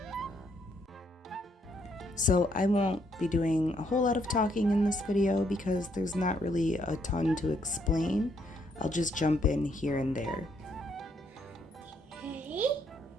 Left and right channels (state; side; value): normal; both; correlation 0.72